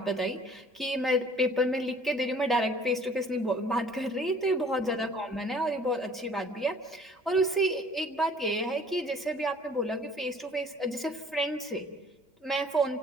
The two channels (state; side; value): normal; both; correlation 0.54